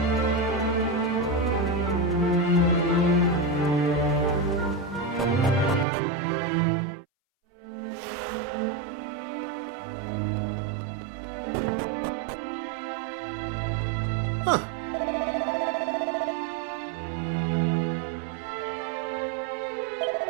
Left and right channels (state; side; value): drops out; left; at 5.9 s